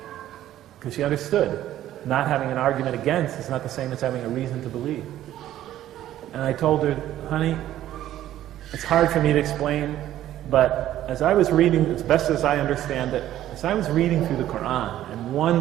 Because she understood not having an argument against is not the same as having a reason to believe. And I told her, honey, it's hard for me to explain, but as I was reading, as best as I understand it, as I was reading through the Quran, and one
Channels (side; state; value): left; quieter; 12.8 dB